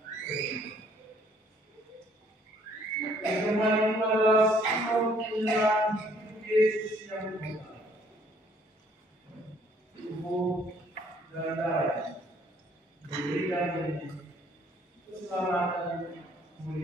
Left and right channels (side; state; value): both; normal; correlation 0.62